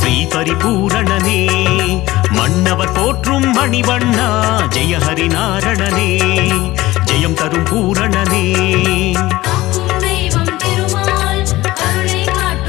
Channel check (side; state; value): right; quieter; 17.9 dB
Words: பரிபூரணனே மன்னவர் போற்றும் மணிவண்ணா ஜெய ஹரி நாரணனே ஜெயம் தரும் பூரணனே